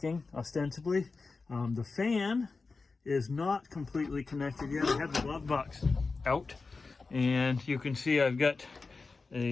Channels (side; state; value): right; quieter; 4.1 dB